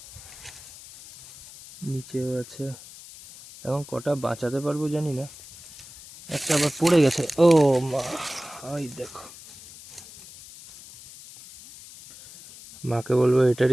নিচেও আছে। এখন কটা বাঁচাতে পারবো জানি না, একটা আবার পড়ে গেছে। ও মা, ওই দেখো, মাকে বলবো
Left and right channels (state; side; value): noise; left; hiss, 18 dB below the sound